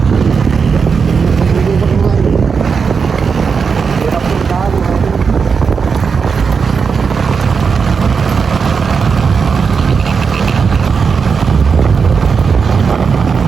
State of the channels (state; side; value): quieter; left; 5.7 dB